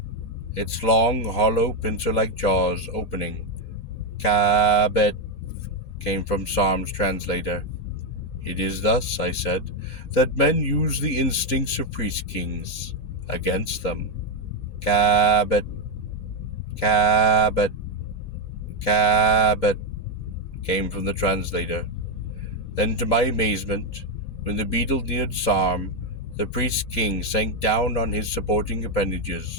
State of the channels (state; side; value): late; right; 3.8 ms